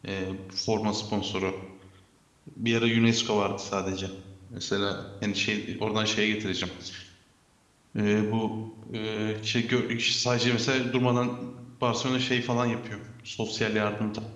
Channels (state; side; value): identical; both; correlation 1.00